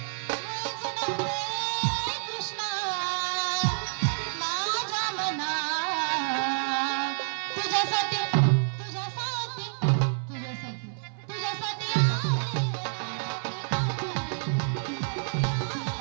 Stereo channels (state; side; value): silent; left; 59 dB below the other